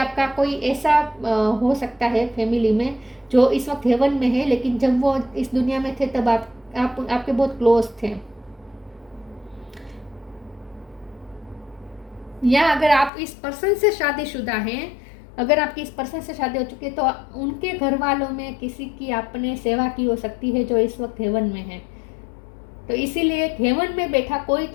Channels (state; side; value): drops out; right; at 13.1 s